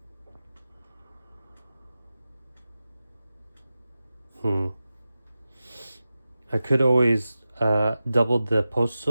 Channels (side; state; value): both; inverted; correlation -0.94